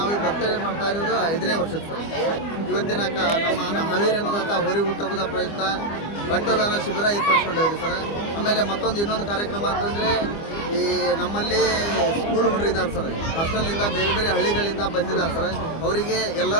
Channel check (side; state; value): right; late; 25 ms